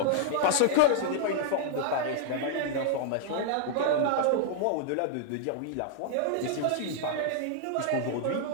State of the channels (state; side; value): different; both; correlation -0.01